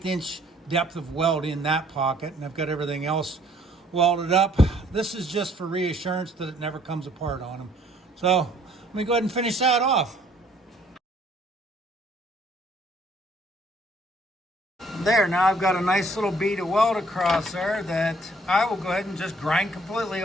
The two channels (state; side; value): normal; both; correlation 0.61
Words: inch depth of weld in that pocket, and I've got everything else welded up. This is just for reassurance that it never comes apart on them. So let me go ahead and finish that off. There, now I've got a nice little bead of weld across there that I will go ahead and just grind completely